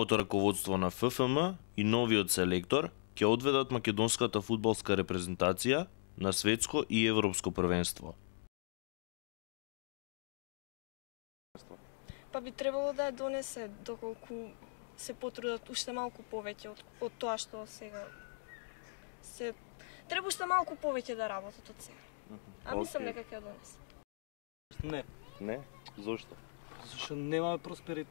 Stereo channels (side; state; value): right; silent; digital silence